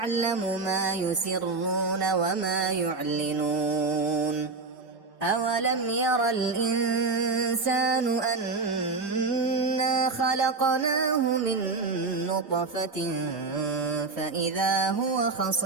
ما يسرون وما يعلنون أولم ير الإنسان أنا خلقناه من نطفة فإذا هو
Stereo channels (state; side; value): quieter; left; 4.0 dB